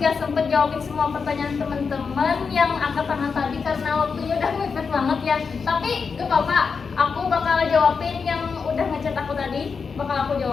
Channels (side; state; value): right; quieter; 5.4 dB